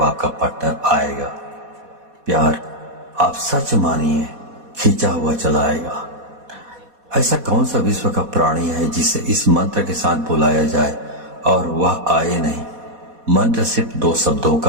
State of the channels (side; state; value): left; late; 4.1 ms